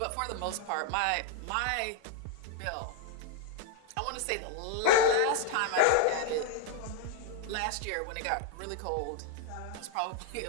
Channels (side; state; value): both; different; correlation 0.00